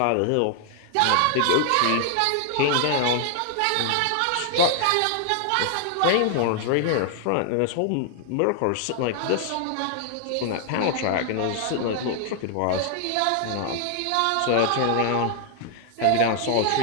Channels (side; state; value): both; different; correlation 0.00